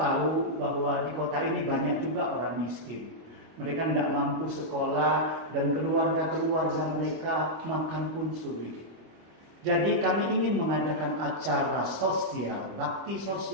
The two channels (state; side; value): late; left; 25 ms